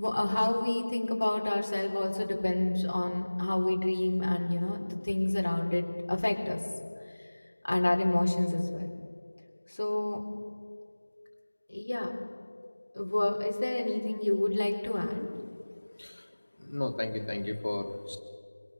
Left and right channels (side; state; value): both; inverted; correlation -1.00